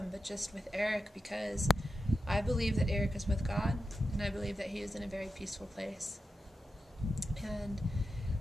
but just with Eric, because I believe that Eric is with God, and I believe that he is in a very peaceful place. And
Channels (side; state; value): both; normal; correlation 0.90